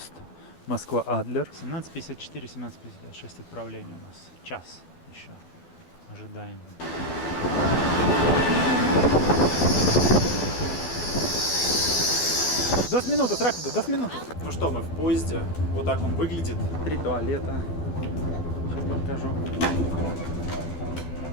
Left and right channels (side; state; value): right; late; 12 ms